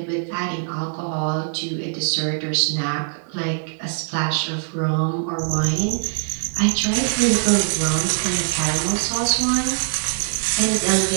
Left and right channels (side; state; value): left; silent; digital silence